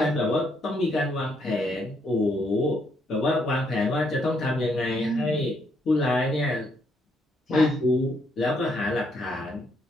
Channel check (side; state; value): both; normal; correlation 0.74